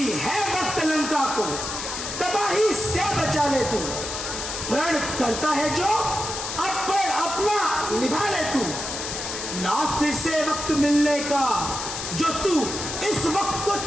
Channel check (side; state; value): left; noise; hiss, 5 dB below the sound